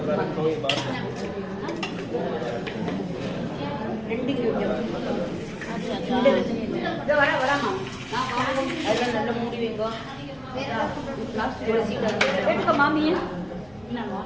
2 கிலோ வராமா. அதெல்லாம் நல்ல மூடி வைங்கோ. எடுக்க மாமியா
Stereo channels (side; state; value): right; noise; hum, 27 dB below the sound